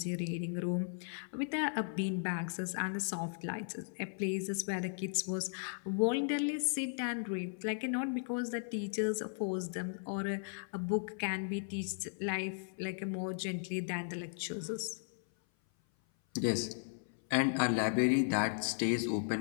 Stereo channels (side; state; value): right; silent; 54 dB below the other